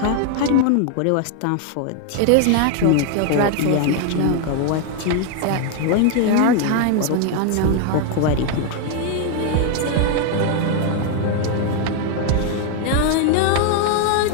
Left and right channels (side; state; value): both; different; correlation 0.00